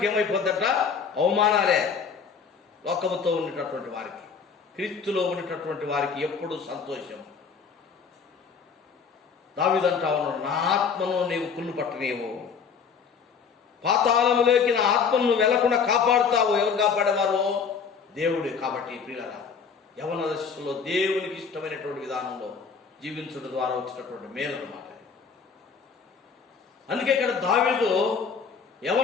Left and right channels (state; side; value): quieter; right; 6.0 dB